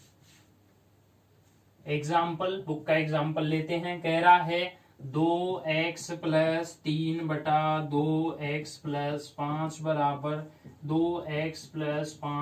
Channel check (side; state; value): both; identical; correlation 1.00